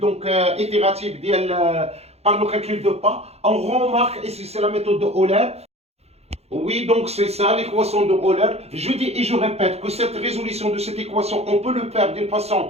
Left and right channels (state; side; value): late; left; 0.30 ms